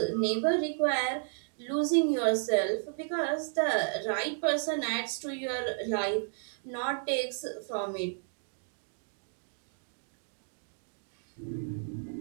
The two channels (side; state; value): left; silent; digital silence